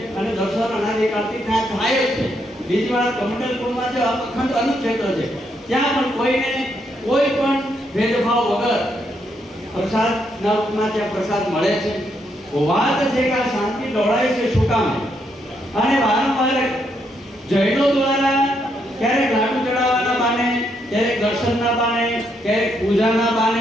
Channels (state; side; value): normal; both; correlation 0.77